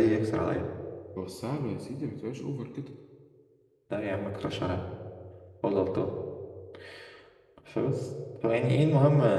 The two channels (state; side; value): identical; both; correlation 1.00